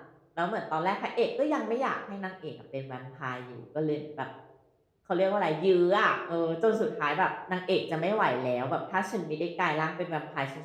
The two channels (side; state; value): both; identical; correlation 1.00